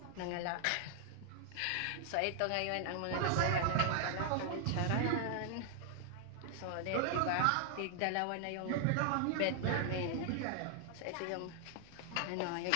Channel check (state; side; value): different; both; correlation 0.00